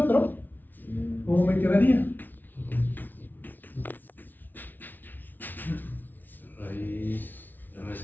¿cómo me quedaría? Raíz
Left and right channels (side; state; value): right; late; 0.086 ms